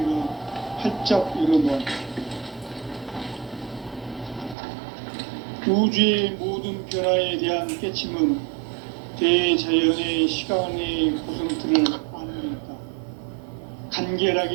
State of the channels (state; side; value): drops out; left; at 4.5 s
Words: 활짝 열어놓았다. 우주의 모든 변화에 대한 깨침은 대자연의 시간의 구성틀을 안는다.